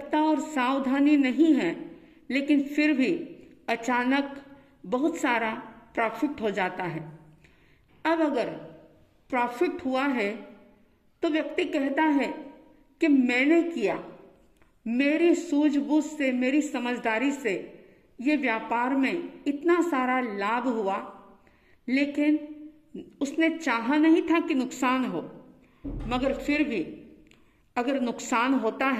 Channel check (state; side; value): identical; both; correlation 1.00